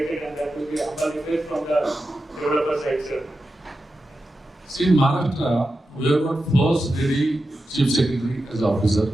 and that will be a humble request from the developer side, sir. See, in Maharashtra, we have got first lady chief secretary as officer,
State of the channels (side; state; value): both; normal; correlation 0.91